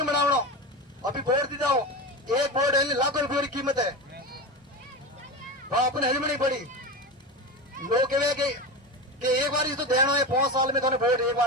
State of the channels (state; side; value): normal; both; correlation 0.23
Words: बनाओ। अभी बोर्ड दी जाओ, एक बोर्ड है लाखों रुपये की कीमत है, वहां अपने हजमनी पड़ी। लोग कहे कि एक बार तो देना है 5 साल में थोड़े वोट एक